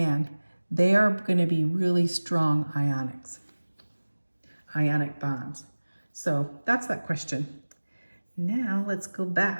they are going to be really strong ionic bonds. So that's that question. Now let's go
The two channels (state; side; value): inverted; both; correlation -1.00